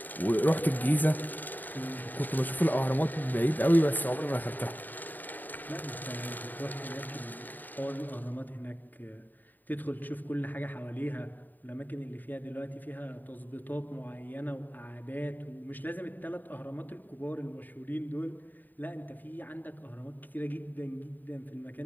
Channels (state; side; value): late; right; 0.087 ms